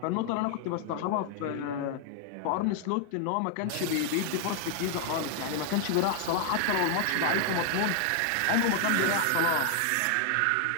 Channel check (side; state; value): both; different; correlation 0.00